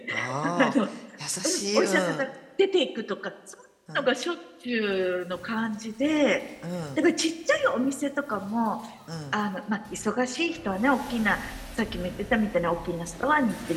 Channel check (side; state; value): both; identical; correlation 1.00